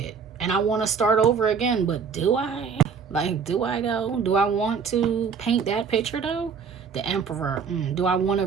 And I want to start over again, but do I? Like, do I though? Do I want to paint that picture though? The Emperor. Do I want to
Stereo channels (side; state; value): left; quieter; 6.1 dB